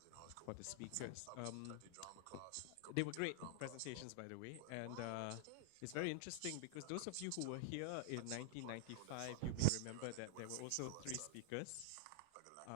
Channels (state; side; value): different; both; correlation -0.01